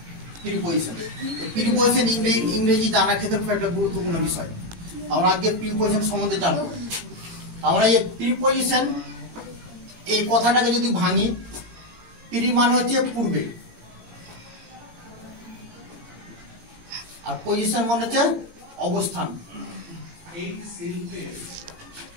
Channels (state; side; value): late; left; 17 ms